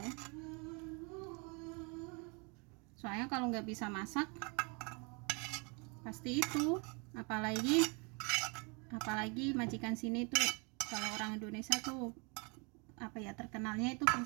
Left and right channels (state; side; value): quieter; left; 32.3 dB